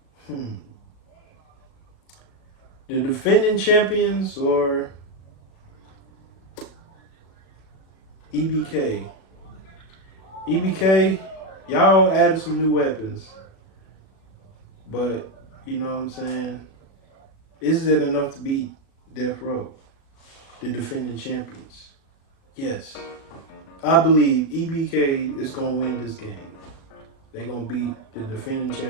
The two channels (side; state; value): right; late; 37 ms